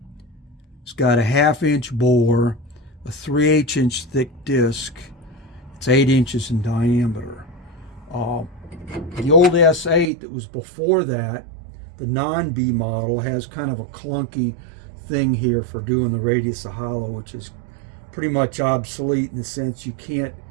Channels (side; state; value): left; drops out; at 10.1 s